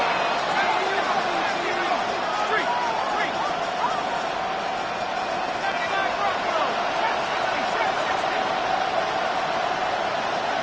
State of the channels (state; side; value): identical; both; correlation 1.00